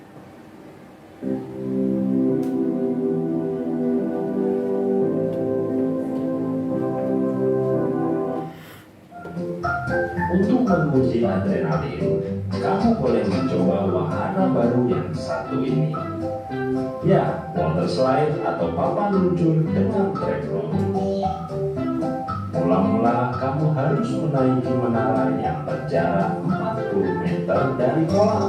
Untuk menguji adrenalin, kamu boleh mencoba wahana baru yang satu ini. Ya, water slide atau papan luncur dengan trekroll. Mula-mula kamu harus menaiki menara yang berjarak 40 meter dari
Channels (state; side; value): identical; both; correlation 1.00